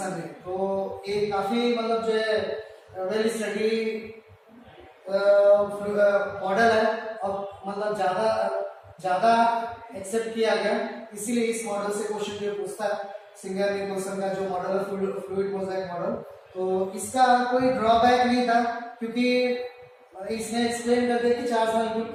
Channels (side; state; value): both; identical; correlation 1.00